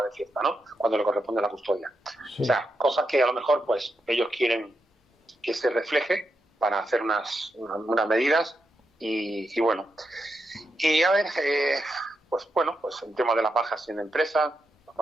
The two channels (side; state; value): both; normal; correlation 0.85